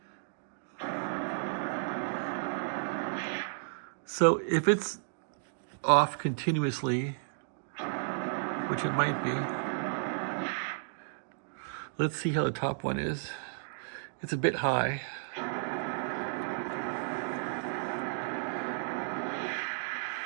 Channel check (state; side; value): silent; left; digital silence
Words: So if it's off continuously, which it might be, let's see how the top one is. It's a bit high.